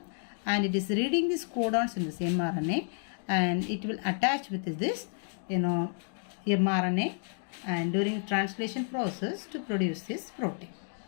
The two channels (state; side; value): silent; right; 57 dB below the other